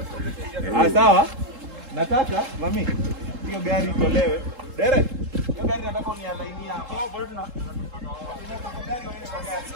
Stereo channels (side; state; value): left; late; 3.7 ms